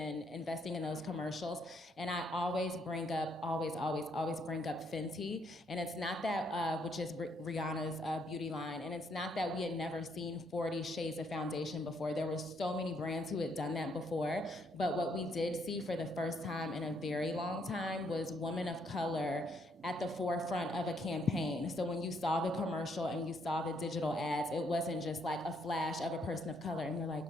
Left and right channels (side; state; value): both; normal; correlation 0.72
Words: investing in those commercials? And I always bring up, always bring up Fenty. And it's not that, which is Rihanna's beauty line. And it's not that we had never seen 40 shades of foundation before. There were so many brands who had done that before. But what we did see for the first time in a very long time was women of color at the forefront of a campaign. So when you saw the commercial and you saw the digital ads, it wasn't just like a flash of a person of color and you're like,